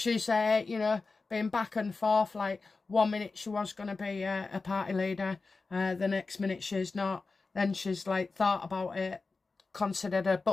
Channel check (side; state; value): right; quieter; 4.0 dB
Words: you know, been back and forth. Like, 1 minute she was going to be a party leader. The next minute she's not. Then she's, like, thought about it, considered a